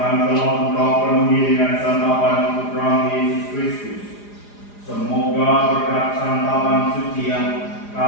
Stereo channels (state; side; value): late; right; 4.9 ms